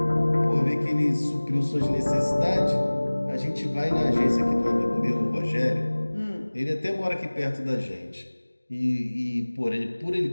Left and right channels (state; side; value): inverted; both; correlation -1.00